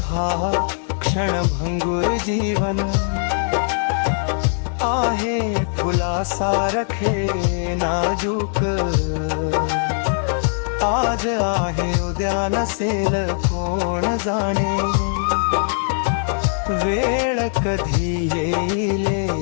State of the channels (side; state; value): right; silent; digital silence